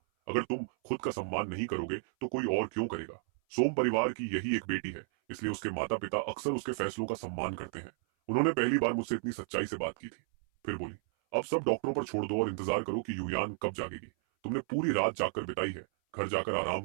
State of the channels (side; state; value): left; silent; 56 dB below the other